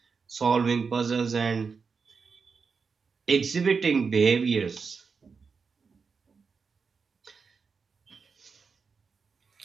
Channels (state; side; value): quieter; left; 5.3 dB